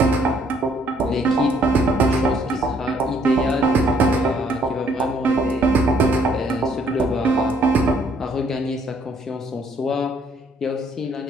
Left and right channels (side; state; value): both; normal; correlation 0.65